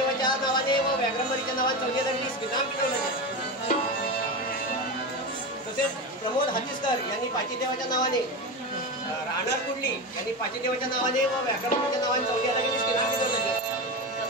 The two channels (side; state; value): both; normal; correlation 0.20